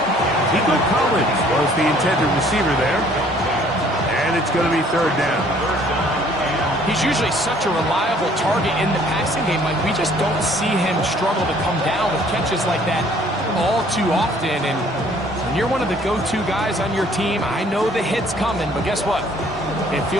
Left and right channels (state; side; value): normal; both; correlation 0.58